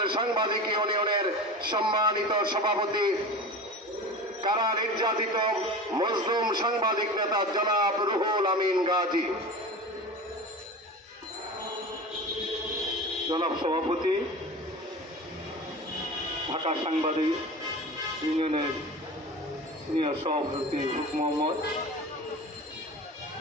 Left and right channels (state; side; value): normal; both; correlation 0.32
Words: সাংবাদিক ইউনিয়নের সম্মানিত সভাপতি, কারা নির্যাতিত মজলুম সাংবাদিক নেতা জনাব রুহুল আমিন গাজী। জনাব সভাপতি, ঢাকা সাংবাদিক ইউনিয়নের সিনিয়র সভাপতি মোহাম্মদ,